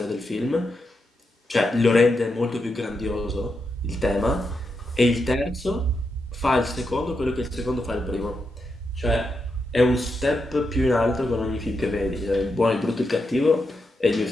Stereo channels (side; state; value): both; normal; correlation 0.85